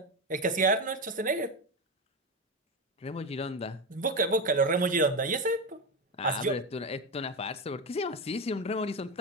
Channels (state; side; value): normal; both; correlation 0.15